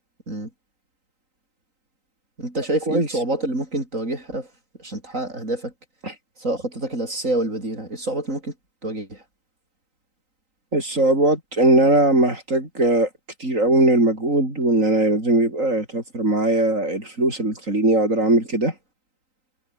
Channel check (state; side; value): late; left; 3.9 ms